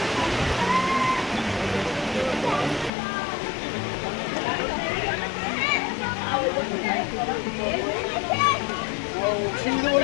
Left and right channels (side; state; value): right; drops out; at 2.9 s